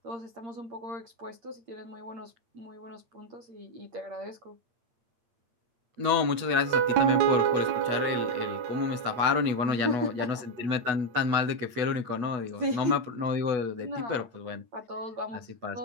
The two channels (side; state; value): left; late; 8.7 ms